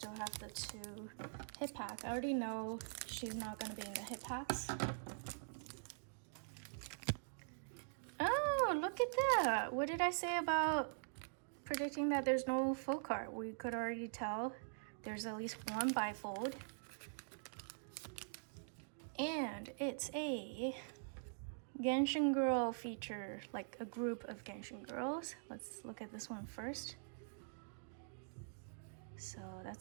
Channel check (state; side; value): silent; left; digital silence